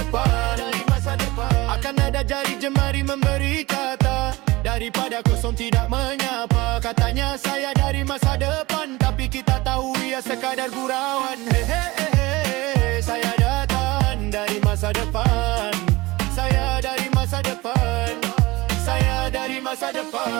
depan. Akan ada jari jemari memberi kata, daripada kosong tidak menyapa. Katanya saya dari masa depan, tapi kita tahu ia sekadar gurauan. Saya datang dari masa depan. Saya dari masa depan. Saya dari masa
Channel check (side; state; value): left; quieter; 21.0 dB